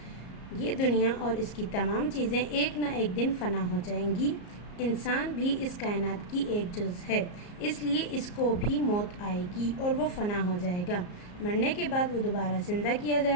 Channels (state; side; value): late; right; 34 ms